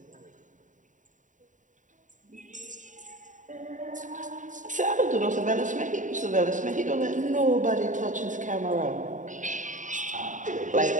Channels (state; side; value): late; left; 0.37 ms